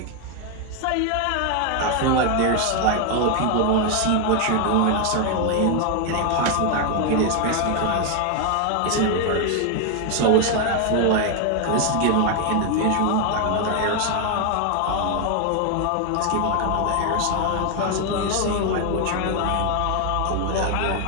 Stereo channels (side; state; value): both; different; correlation 0.01